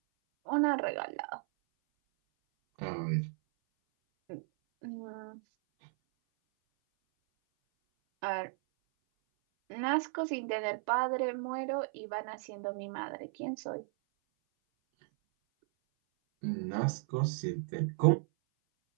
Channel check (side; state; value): left; silent; 54 dB below the other